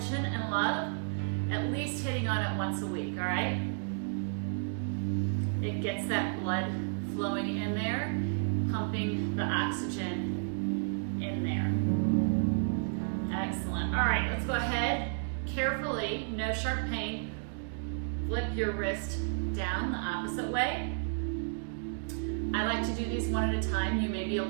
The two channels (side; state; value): left; silent; digital silence